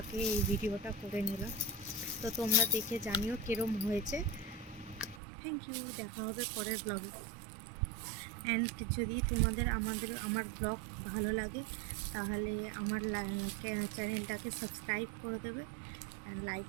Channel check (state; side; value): drops out; left; at 5.2 s